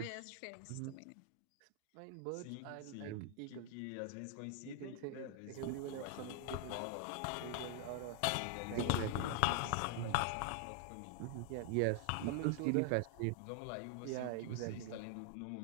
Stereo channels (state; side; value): different; both; correlation 0.00